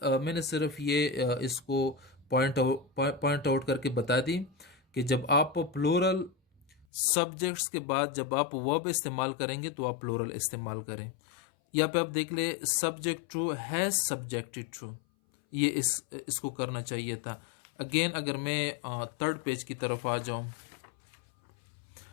मैंने सिर्फ ये इसको पॉइंट आउट करके बता दी कि जब आप प्लूरल सब्जेक्ट्स के बाद जब आप वर्ब इस्तेमाल करेंगे तो आप प्लूरल इस्तेमाल करें। यहाँ पे आप देख ले, subject true has subjected true, ये इसको करना चाहिए था। अगेन अगर मैं थर्ड पेज की तरफ आ जाऊं,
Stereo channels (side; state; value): right; drops out; at 6.9 s